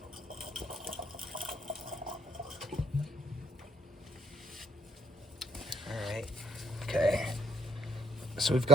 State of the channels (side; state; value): both; normal; correlation 0.68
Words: Okay, so we've